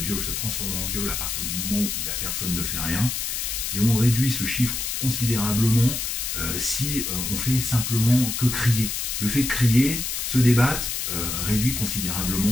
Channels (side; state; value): left; noise; hiss, 2 dB below the sound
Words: se transforme en viol à partir du moment où la personne ne fait rien, et on réduit ce chiffre considérablement si on fait simplement que crier. Le fait de crier, se débattre, réduit